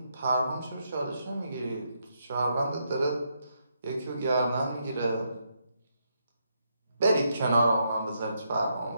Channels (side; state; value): both; inverted; correlation -0.78